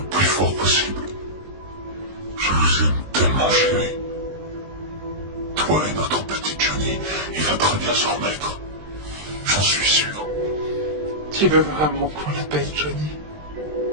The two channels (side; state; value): left; late; 20 ms